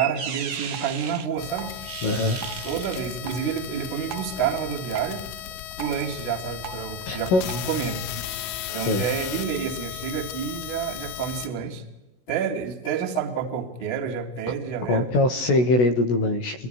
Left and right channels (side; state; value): right; late; 16 ms